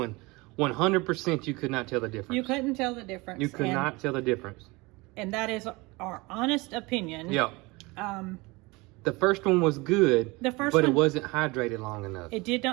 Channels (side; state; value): left; quieter; 24.0 dB